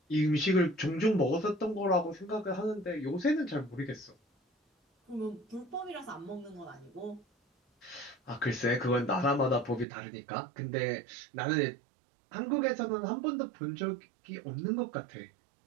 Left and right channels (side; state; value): left; drops out; at 9.9 s